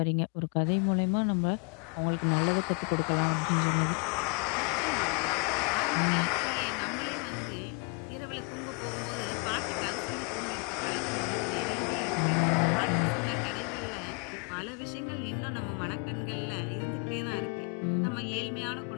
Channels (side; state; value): right; quieter; 35.6 dB